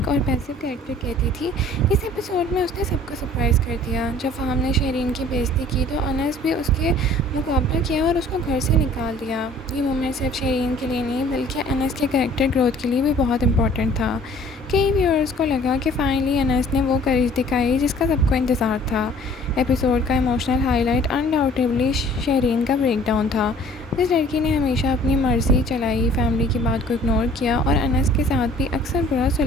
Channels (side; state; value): both; normal; correlation 0.53